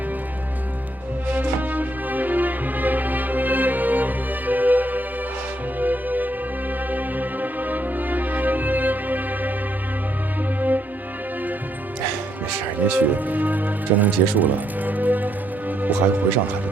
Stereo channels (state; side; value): normal; both; correlation 0.75